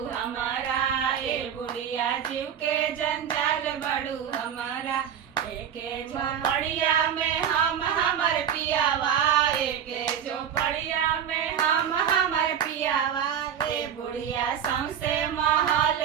हमारा, ए बुढ़िया जीव के जंजाल बड़ू हमारा। एके झोपड़िया में हम हमर पियावा, एके झोपड़िया में हम हमर पियावा। ए बुढ़िया सौंसे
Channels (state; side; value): quieter; left; 8.8 dB